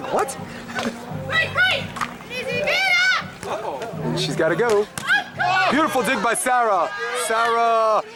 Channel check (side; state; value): both; identical; correlation 1.00